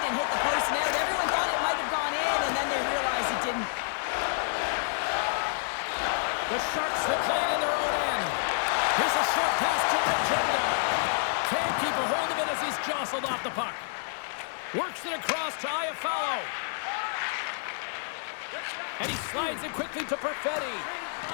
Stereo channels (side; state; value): right; silent; 59 dB below the other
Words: and hit the post and out. Everyone thought it might have gone in, and then they realized it didn't. The Sharks will play it in their own end. Here's a short pass to Agenda. Can't keep a hold of it as he's jostled off the puck. Works it across to Iafallo. And he slides it quickly to Perfetti.